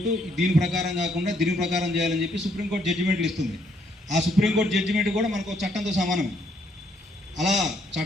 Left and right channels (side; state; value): both; normal; correlation 0.70